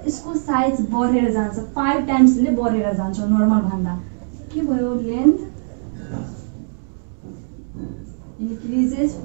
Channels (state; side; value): silent; left; digital silence